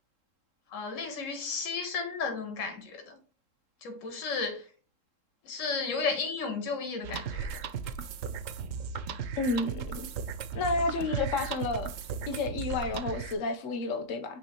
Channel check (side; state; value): right; late; 3.7 ms